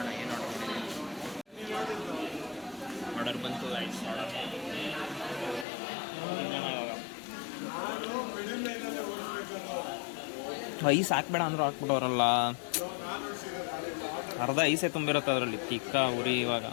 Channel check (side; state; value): right; drops out; at 5.7 s